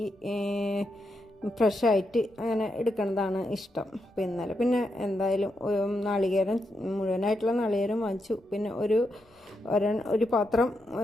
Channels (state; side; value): normal; both; correlation 0.83